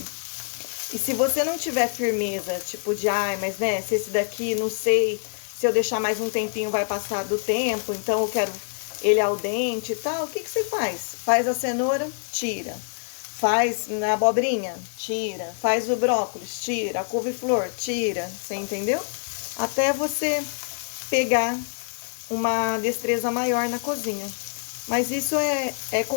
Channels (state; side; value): silent; right; digital silence